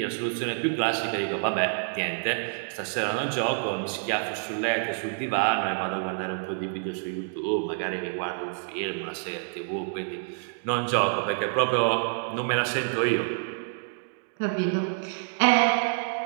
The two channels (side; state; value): left; silent; digital silence